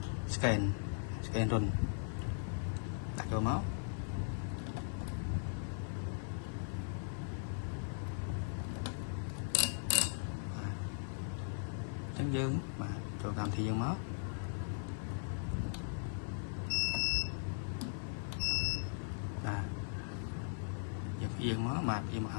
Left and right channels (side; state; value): right; silent; 52 dB below the other